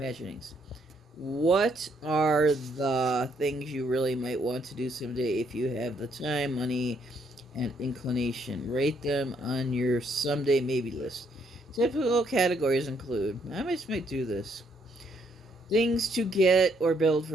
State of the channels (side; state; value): both; normal; correlation 0.71